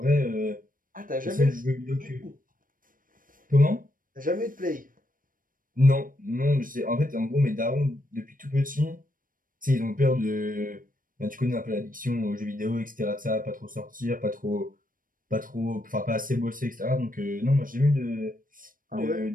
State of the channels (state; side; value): late; left; 0.40 ms